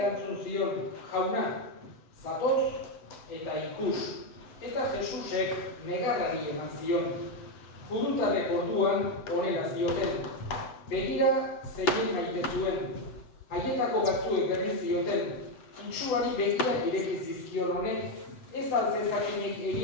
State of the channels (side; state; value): right; late; 7.8 ms